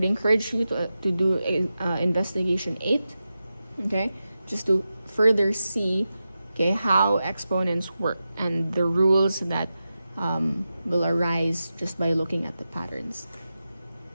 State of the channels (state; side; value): inverted; both; correlation -0.91